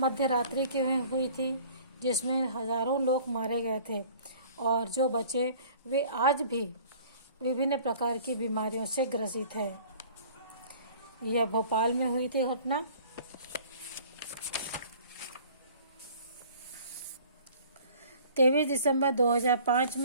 रात्रि की हुई थी जिसमें हजारों लोग मारे गए थे और जो बचे वे आज भी विभिन्न प्रकार की बीमारियों से ग्रसित है। यह भोपाल में हुई थी घटना। 23 दिसंबर 2005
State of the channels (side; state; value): both; inverted; correlation -0.49